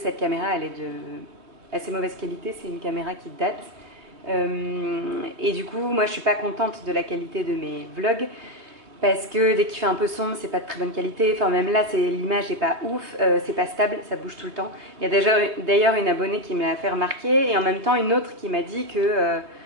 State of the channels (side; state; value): left; late; 3.4 ms